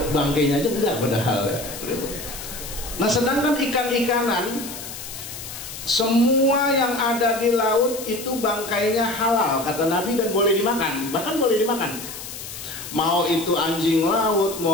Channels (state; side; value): noise; left; hiss, 10 dB below the sound